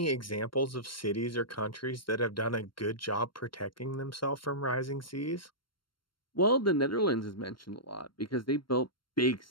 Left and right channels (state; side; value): late; right; 0.72 ms